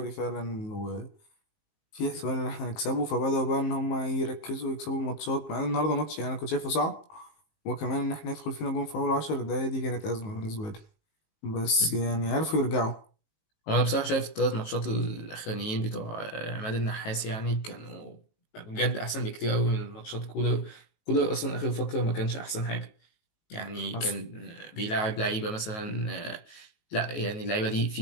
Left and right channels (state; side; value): late; right; 19 ms